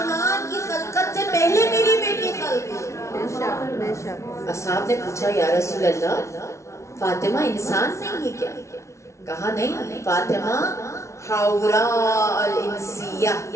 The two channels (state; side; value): late; right; 0.14 ms